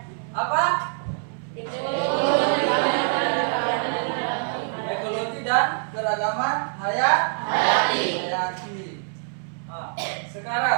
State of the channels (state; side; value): silent; left; 59 dB below the other